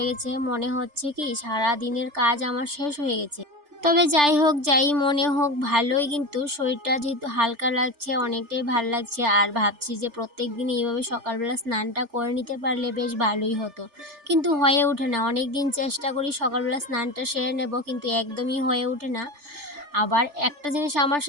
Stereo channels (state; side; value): late; left; 3.4 ms